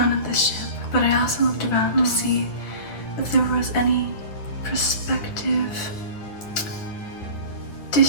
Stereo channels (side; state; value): right; late; 9.7 ms